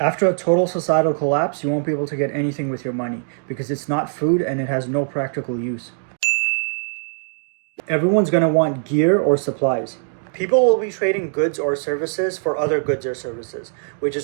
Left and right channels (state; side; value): silent; left; digital silence